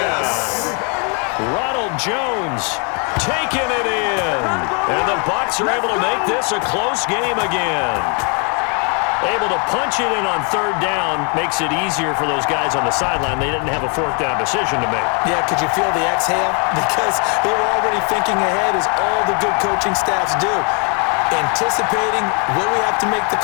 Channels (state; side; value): quieter; right; 36.5 dB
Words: Ronald Jones taking it in. And the Bucs are able to make this a close game again. Able to punch it in on 3rd down makes it easier for those guys on the sideline. They didn't have a 4th down decision to make. Yeah, could you feel the exhale? Because they were already thinking ahead, as all the good coaching staffs do. Anticipating, will we have to make the